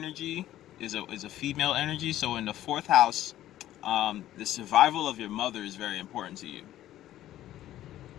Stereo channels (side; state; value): right; quieter; 13.4 dB